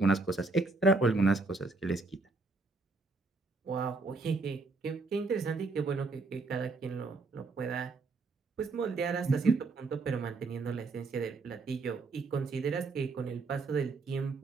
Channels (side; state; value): left; quieter; 3.7 dB